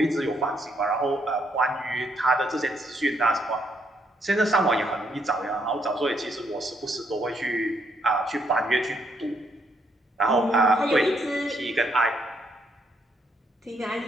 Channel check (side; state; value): both; normal; correlation 0.74